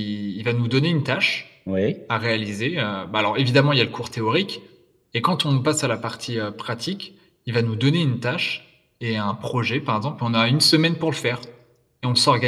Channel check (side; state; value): both; identical; correlation 1.00